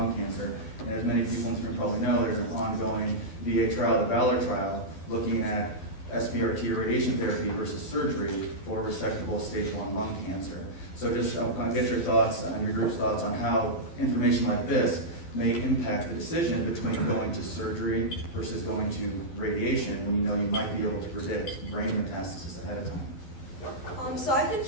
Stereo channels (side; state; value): right; late; 12 ms